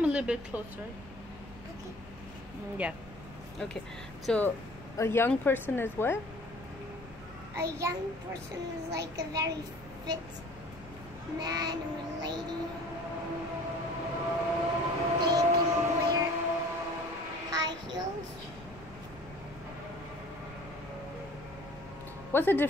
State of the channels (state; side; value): noise; left; rumble, 18 dB below the sound